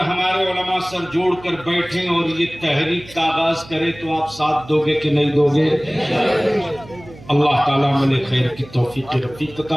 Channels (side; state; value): right; noise; hum, 20 dB below the sound